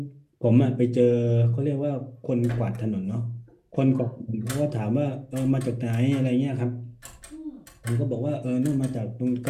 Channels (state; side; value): identical; both; correlation 1.00